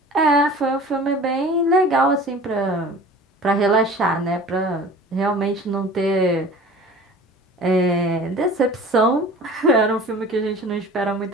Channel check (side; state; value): both; normal; correlation 0.42